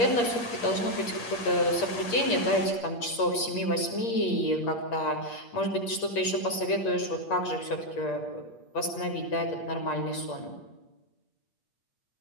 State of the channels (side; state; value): right; late; 8.5 ms